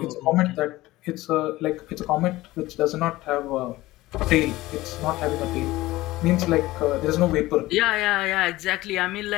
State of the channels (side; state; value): right; quieter; 18.0 dB